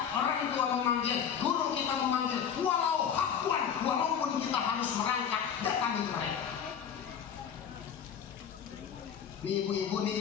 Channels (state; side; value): quieter; right; 8.0 dB